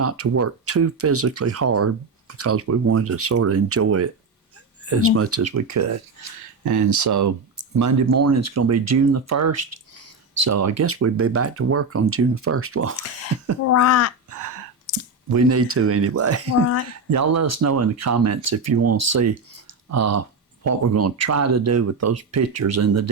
to work too physically hard because we wanted to sort of enjoy it as much as we could. And so Monday morning is going to be June the 1st. So I guess we'd be back to work on June the 1st. Well, right. We need to anyway. Right. Y'all let us know in the comments if you want to see what we're going to try to do with those pictures in the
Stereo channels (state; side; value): quieter; left; 3.6 dB